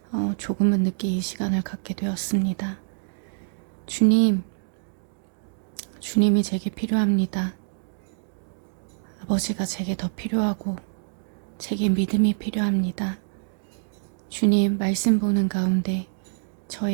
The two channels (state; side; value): silent; left; digital silence